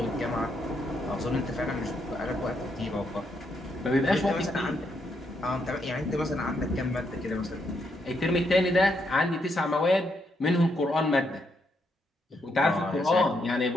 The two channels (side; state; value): both; normal; correlation 0.78